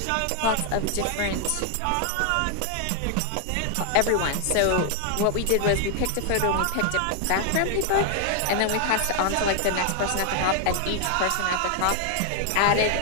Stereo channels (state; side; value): different; both; correlation 0.00